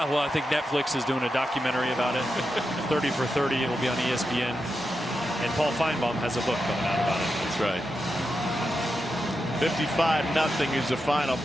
I think Netflix is doing a documentary about it. 30 for 30. It will be on ESPN. And Paul Feinbaum has a book coming out about it. That's right. 55-0 is the final.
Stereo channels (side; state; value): both; normal; correlation 0.88